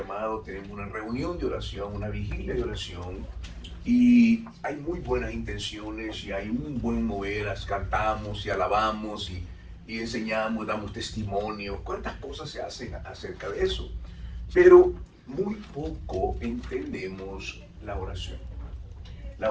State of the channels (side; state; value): both; identical; correlation 1.00